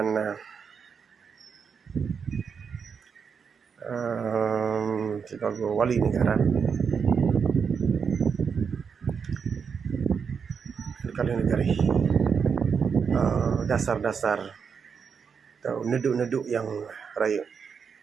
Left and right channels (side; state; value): left; quieter; 6.3 dB